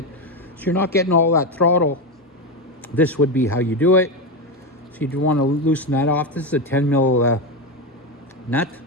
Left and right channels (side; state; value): both; normal; correlation 0.13